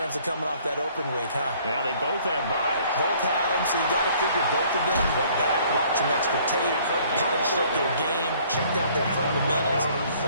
of coming off that open week, huh? Yeah, they both have byes. Both had them, so you got to figure both of them went back, watched some extra tape, polished up their game, checked out their fundamentals,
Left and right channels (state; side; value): inverted; both; correlation -0.58